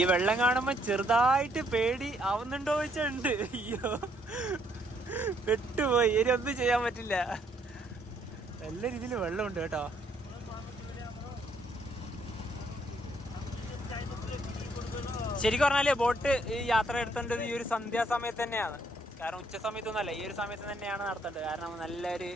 വെള്ളം കാണുമ്പോ ചെറുതായിട്ട് പേടി ആവുന്നുണ്ടോ വെച്ചുണ്ട്. അയ്യോ, പെട്ടുപോയി. ഇനി ഒന്നും ചെയ്യാൻ പറ്റില്ല. നല്ല രീതിയിൽ വെള്ളമുണ്ട് കേട്ടോ. ശരിക്കും പറഞ്ഞാല് ബോട്ട് ഈ യാത്ര എടുത്തേണ്ടത് ഈ ഒരു സന്ധ്യാസമയത്ത് തന്നെയാണ്. കാരണം ഉച്ച സമയത്തൊന്നുമല്ല, ഈ ഒരു സമയത്ത് തന്നെയാണ് നടത്തേണ്ടത്. കാരണം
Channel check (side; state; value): both; normal; correlation 0.69